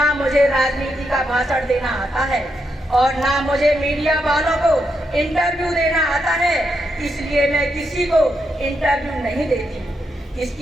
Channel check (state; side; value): normal; both; correlation 0.82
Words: मुझे राजनीति का भाषण देना आता है और ना मुझे मीडिया वालों को इंटरव्यू देना आता है। इसलिए मैं किसी को इंटरव्यू नहीं देती।